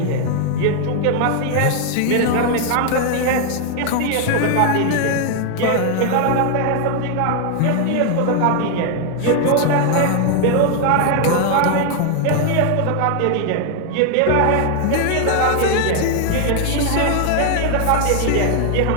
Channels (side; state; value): both; different; correlation 0.00